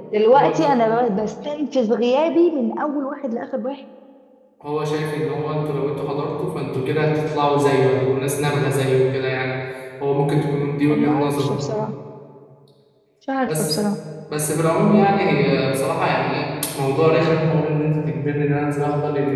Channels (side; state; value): both; identical; correlation 1.00